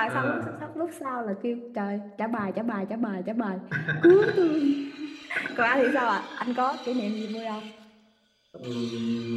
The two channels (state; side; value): identical; both; correlation 1.00